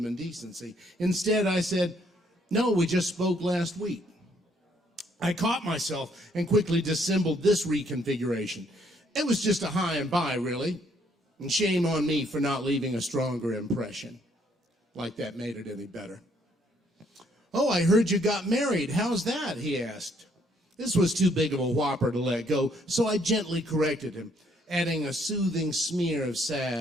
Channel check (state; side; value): normal; both; correlation 0.68